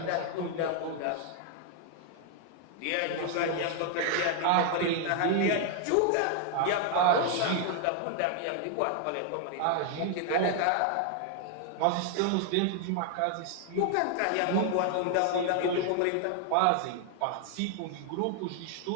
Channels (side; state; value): both; different; correlation 0.00